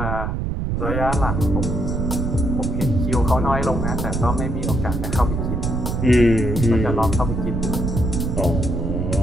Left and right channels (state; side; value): noise; right; rumble, 1 dB below the sound